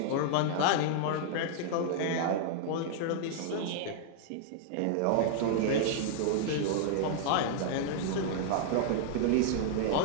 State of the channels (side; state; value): both; different; correlation -0.01